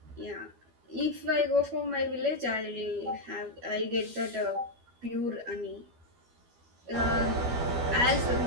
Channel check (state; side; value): late; left; 12 ms